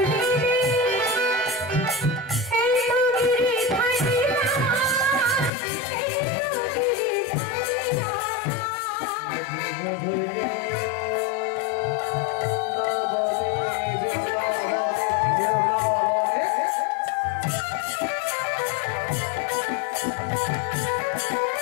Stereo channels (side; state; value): right; drops out; at 5.5 s